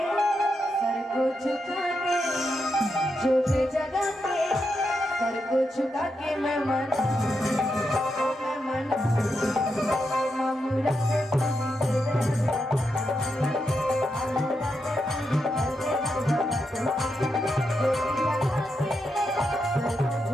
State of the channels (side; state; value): both; normal; correlation 0.84